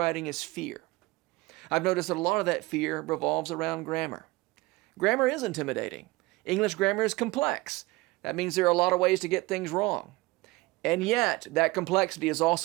is fear. I've noticed that a lot of that fear revolves around grammar. Grammar is intimidating. English grammar is complex. That means there are a lot of ways to get things wrong. And yet, that complexity is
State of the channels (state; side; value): quieter; left; 21.5 dB